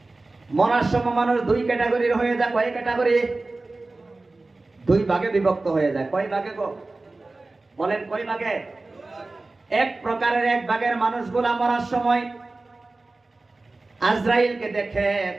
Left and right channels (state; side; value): quieter; left; 3.3 dB